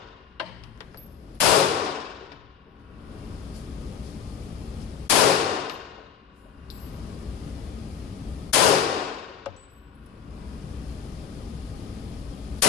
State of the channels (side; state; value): right; quieter; 8.3 dB